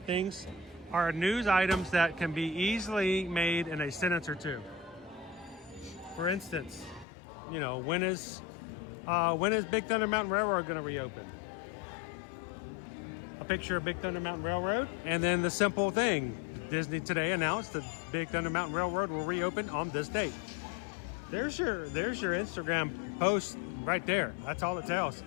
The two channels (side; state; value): right; drops out; at 7.1 s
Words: things are news items that can be easily made in a sentence or two. For instance, you know, when is Big Thunder Mountain Railroad going to reopen? A picture of Big Thunder Mountain Railroad, and then the simple thing: Disney today announced that Big Thunder Mountain Railroad will reopen on this date. There's your Instagram post right there. That's all it tells.